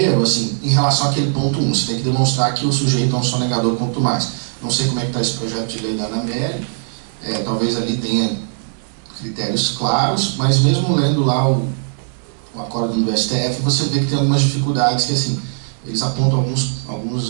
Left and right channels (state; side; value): silent; left; digital silence